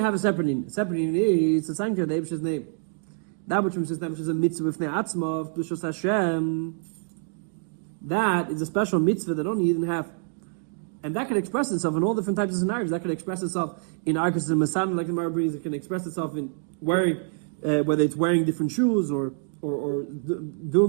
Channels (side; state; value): left; silent; 56 dB below the other